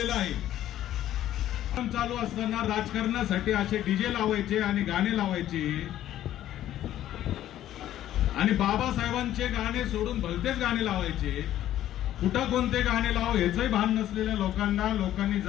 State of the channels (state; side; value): quieter; right; 12.5 dB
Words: आहे। चालू असताना राजकारणासाठी असे डीजे लावायचे आणि गाणे लावायचे आणि बाबासाहेबांचे गाणे सोडून भलतेच गाणे लावायचे। कुठं कोणते गाणे लाव याचंही भान नसलेल्या लोकांनी